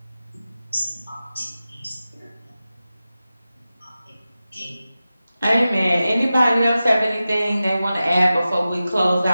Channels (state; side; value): inverted; both; correlation -0.94